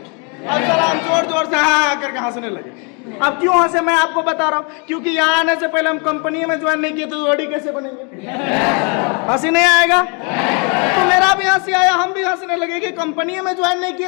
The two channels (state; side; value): quieter; right; 35.3 dB